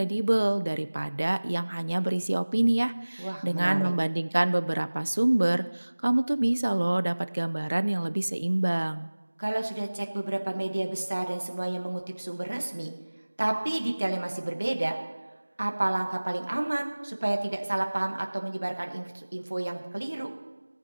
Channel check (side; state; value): both; inverted; correlation -1.00